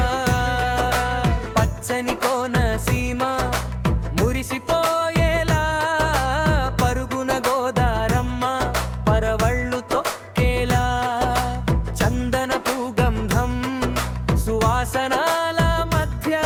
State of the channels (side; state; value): both; identical; correlation 1.00